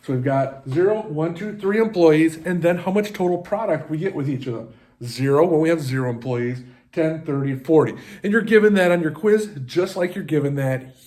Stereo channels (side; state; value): both; identical; correlation 1.00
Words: So we've got 0, 1, 2, 3 employees, and then how much total product we get with each of them. 0 when we have 0 employees, 10, 30, 40. And you're given that on your quiz just like you're given that